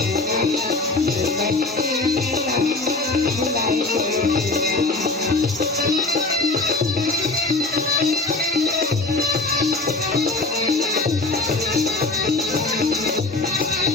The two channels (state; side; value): quieter; right; 3.4 dB